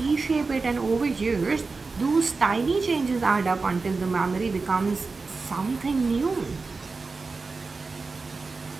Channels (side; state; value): left; quieter; 4.1 dB